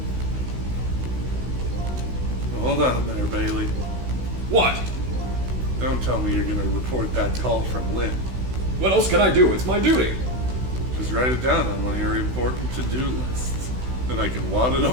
Hold on there, Bailey. What? Don't tell me you're gonna report that call from Lynn. What else can I do? It's my duty. Just write it down on one of your important to-do lists. Then I can wad it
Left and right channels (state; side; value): late; left; 16 ms